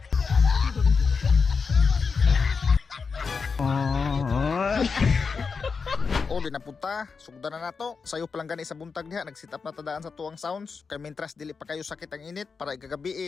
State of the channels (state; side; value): quieter; right; 5.1 dB